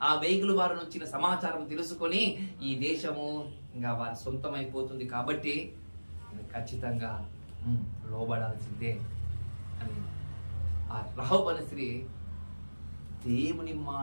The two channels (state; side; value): inverted; both; correlation -1.00